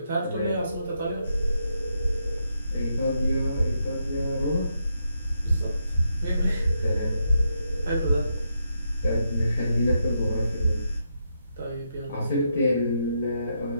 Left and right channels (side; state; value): both; inverted; correlation -0.81